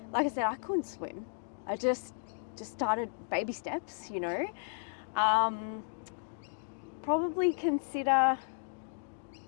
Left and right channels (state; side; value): silent; right; digital silence